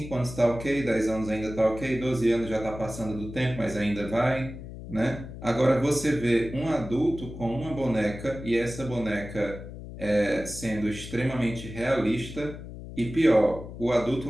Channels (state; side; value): noise; left; hum, 12 dB below the sound